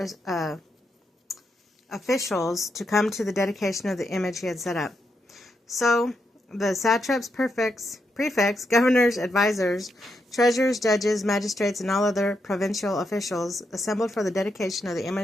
officials to come to the dedication of the image he had set up. So the satraps, prefects, governors, advisors, treasurers, judges, magistrates, and all other provincial officials assembled for the dedication of the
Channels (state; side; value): normal; both; correlation 0.82